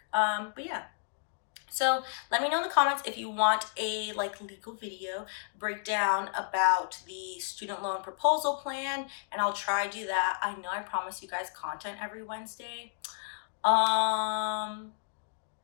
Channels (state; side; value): silent; right; digital silence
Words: But yeah. So let me know in the comments if you want a like legal video breakdown about the student loan proposal plan, and I'll try to do that. I know I promised you guys content every Wednesday. We're